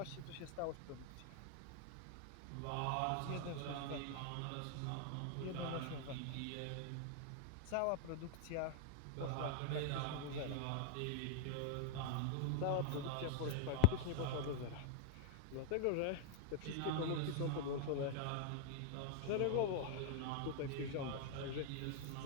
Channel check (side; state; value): both; different; correlation 0.00